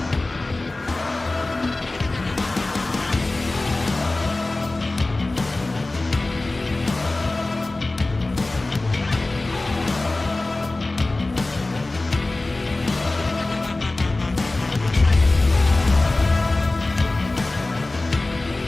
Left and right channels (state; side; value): quieter; right; 3.0 dB